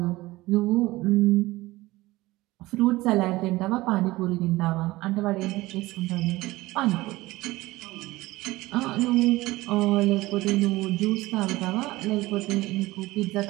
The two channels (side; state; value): left; quieter; 19.2 dB